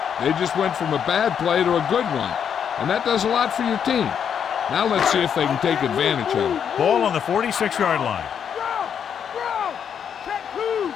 They just went from a bad play to a good one. And that does a lot for your team. Now let's see if they can take advantage of it. Ball on the 46-yard line. Check who?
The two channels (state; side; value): quieter; right; 8.0 dB